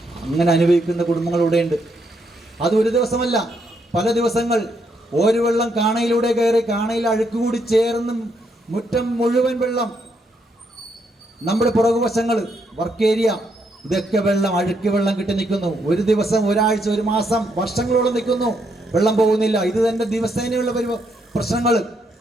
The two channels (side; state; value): both; normal; correlation 0.76